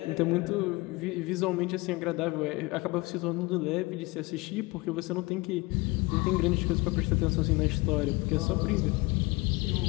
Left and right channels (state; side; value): quieter; right; 23.8 dB